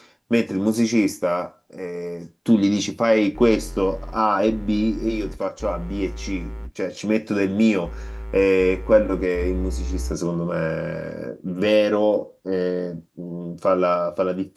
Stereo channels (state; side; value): identical; both; correlation 1.00